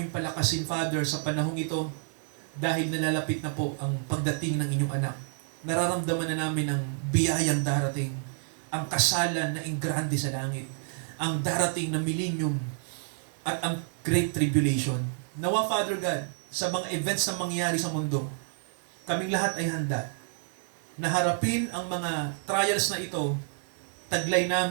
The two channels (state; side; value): silent; left; digital silence